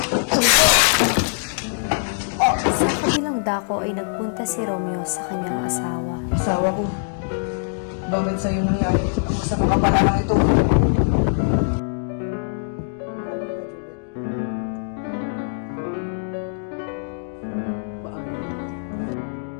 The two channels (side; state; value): right; silent; digital silence